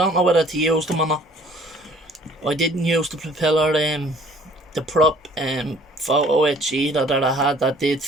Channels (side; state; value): both; normal; correlation 0.55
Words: know whether to use them or not. I didn't use the propeller, the prop photo etch either that I had that did